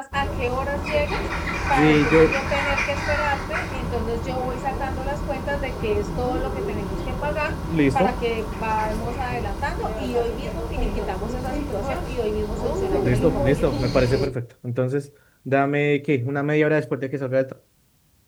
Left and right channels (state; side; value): identical; both; correlation 1.00